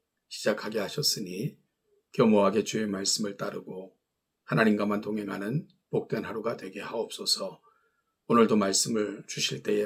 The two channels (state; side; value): identical; both; correlation 1.00